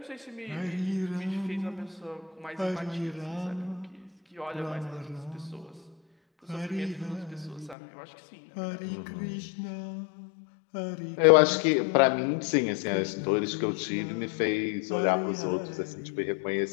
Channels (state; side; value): drops out; right; at 7.8 s